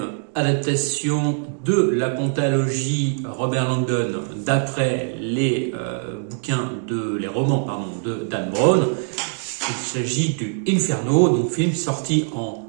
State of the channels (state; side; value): silent; left; 58 dB below the other